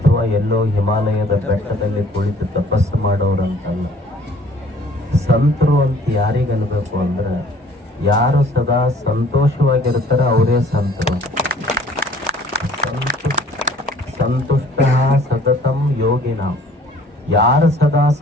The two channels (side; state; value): both; normal; correlation 0.55